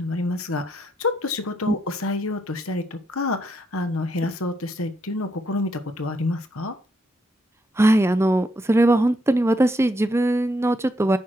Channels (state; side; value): normal; both; correlation 0.77